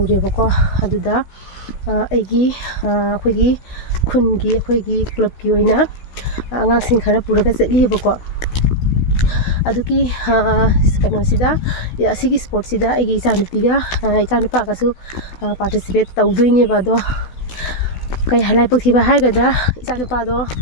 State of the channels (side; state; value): right; late; 16 ms